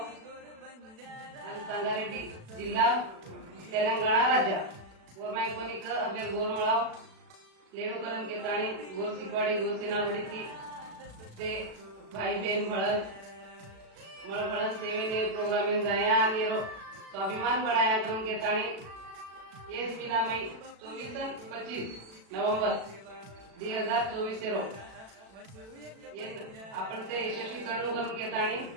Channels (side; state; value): left; late; 36 ms